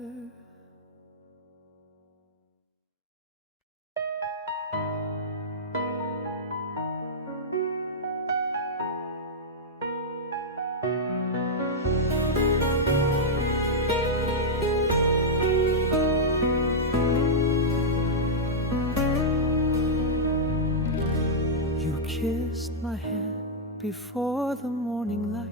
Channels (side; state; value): both; normal; correlation -0.07